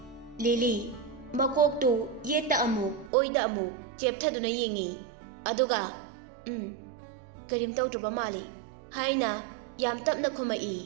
ꯂꯤꯂꯤ ꯃꯀꯣꯛꯇꯨ ꯌꯦꯠꯇ ꯑꯃꯨꯛ ꯑꯣꯏꯗ ꯑꯃꯨꯛ ꯆꯦꯞꯊꯗꯨꯅ ꯌꯦꯡꯉꯤ꯫ ꯑꯗꯨꯒ ꯀꯔꯤꯝ ꯇꯧꯗ꯭ꯔꯕ ꯃꯥꯜꯂꯤ ꯍꯥꯏꯅ ꯌꯥꯝ ꯇꯞꯅ ꯈꯨꯝꯃꯛꯏ꯫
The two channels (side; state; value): left; drops out; at 3.1 s